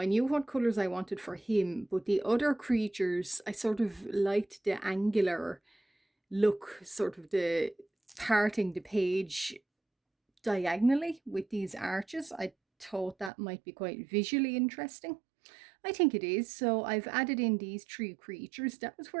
knew what colors I wanted for him, but the other creatures, I sort of liked the angular look, sort of the parting the page diagonally with these arches. I thought that might be quite visually interesting. I think it is. So I've added in these 3 creatures. That was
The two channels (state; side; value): drops out; left; at 13.3 s